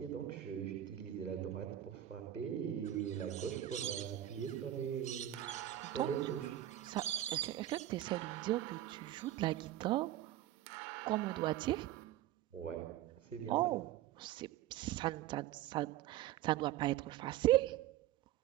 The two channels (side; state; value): left; quieter; 13.2 dB